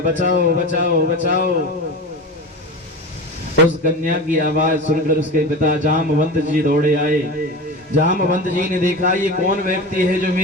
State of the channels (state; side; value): normal; both; correlation 0.28